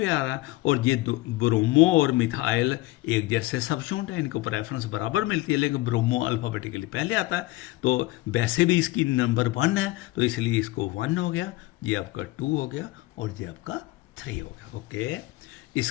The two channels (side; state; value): right; quieter; 19.1 dB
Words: आ रहा है। और ये ब्रोमो और मिथाइल एक जैसे सब्स्टिट्यूट है, इनको प्रेफरेंस बराबर मिलती है, लेकिन ब्रोमो अल्फाबेटिकली पहले आता है, तो वैसे भी इसकी नंबर 1 है तो इसलिए इसको 1 हो गया, ये आपका 2 हो गया और ये आपका 3 हो गया। ओके,